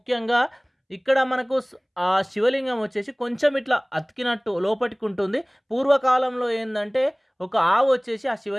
ఇక్కడ మనకు ఆ శివలింగం వచ్చేసి కొంచెం ఇట్లా అతికినట్టు లోపటికి ఉంటుంది. పూర్వకాలంలో ఏంటంటే ఒక ఆవు వచ్చేసి ఆ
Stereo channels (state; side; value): identical; both; correlation 1.00